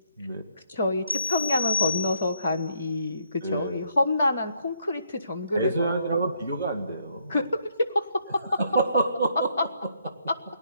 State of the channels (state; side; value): inverted; both; correlation -0.72